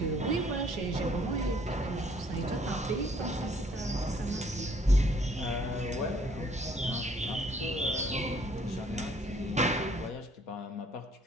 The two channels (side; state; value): both; normal; correlation 0.62